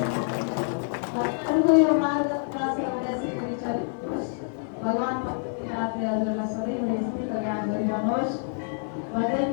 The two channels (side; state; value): right; silent; 58 dB below the other